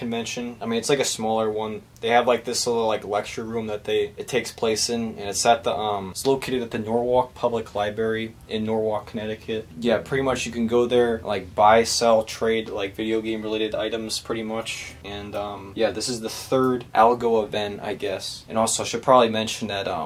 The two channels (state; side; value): identical; both; correlation 1.00